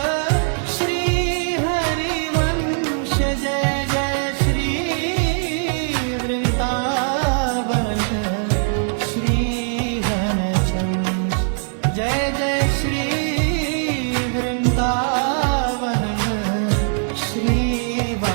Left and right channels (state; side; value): silent; left; 55 dB below the other